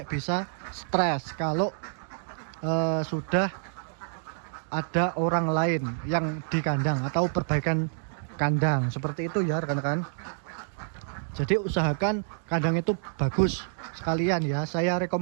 bisa stres kalau sudah ada orang lain yang di kandang atau perbaikan kandang seperti itu ya rekan-rekan. Jadi usahakan kandang itu bagus sekalian ya. Saya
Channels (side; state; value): left; silent; digital silence